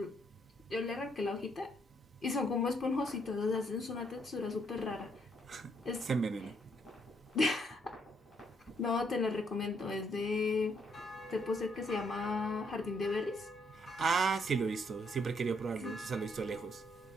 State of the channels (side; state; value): both; normal; correlation 0.71